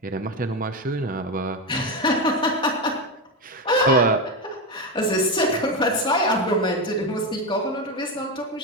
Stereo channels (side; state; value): both; normal; correlation 0.13